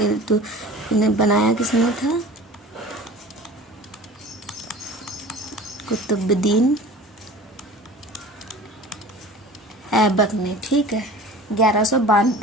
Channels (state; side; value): normal; both; correlation 0.41